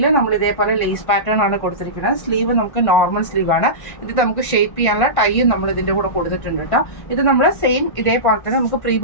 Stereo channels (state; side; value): late; right; 1.5 ms